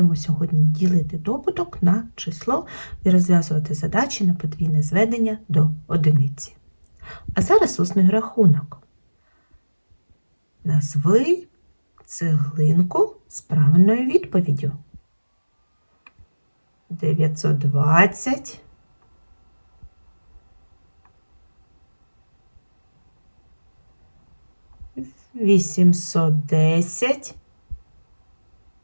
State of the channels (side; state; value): both; inverted; correlation -1.00